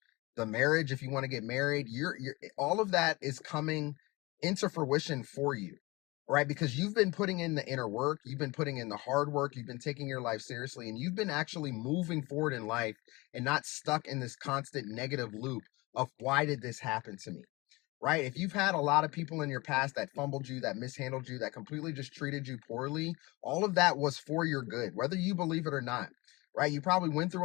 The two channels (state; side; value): quieter; right; 23.4 dB